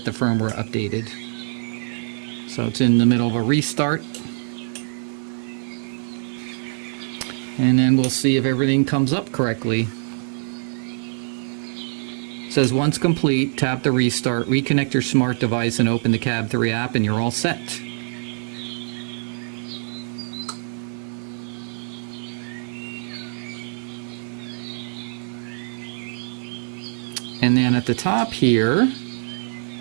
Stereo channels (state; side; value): silent; left; 63 dB below the other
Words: the firmware updated. So it's in the middle of a restart. And then we'll see if everything comes up correctly. It says once complete, tap the restart, reconnect your smart device and open the Cab3 app and you're all set. And then at the top here,